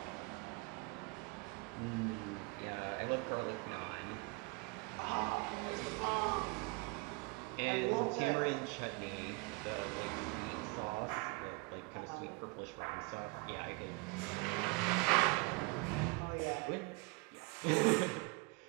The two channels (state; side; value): quieter; left; 27.6 dB